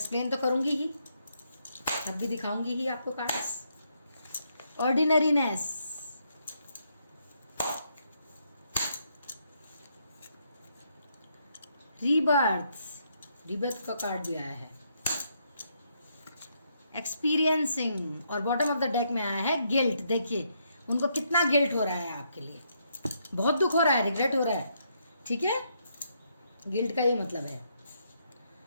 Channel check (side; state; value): both; inverted; correlation -0.75